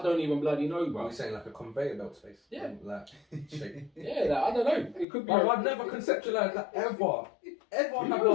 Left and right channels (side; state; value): right; drops out; at 5.1 s